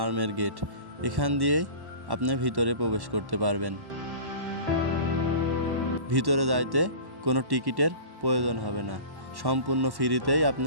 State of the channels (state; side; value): late; left; 1.1 ms